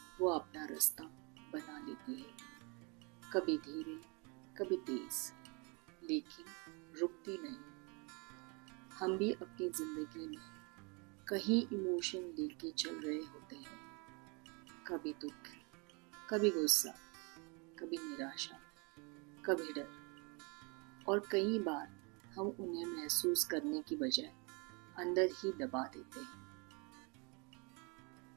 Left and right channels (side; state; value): left; quieter; 31.6 dB